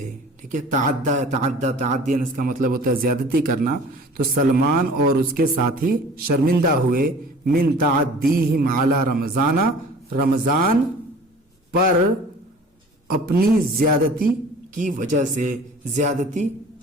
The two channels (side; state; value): both; normal; correlation 0.45